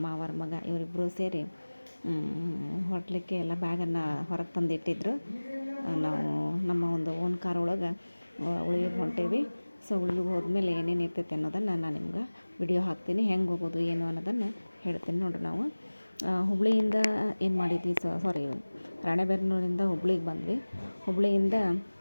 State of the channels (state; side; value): inverted; both; correlation -1.00